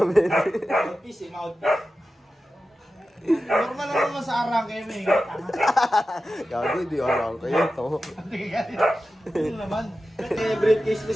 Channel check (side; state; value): both; normal; correlation 0.93